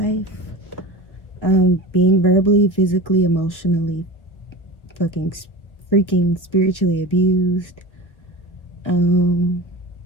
Being verbally, physically, emotionally, freaking spiritually abused. And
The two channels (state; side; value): late; right; 1.4 ms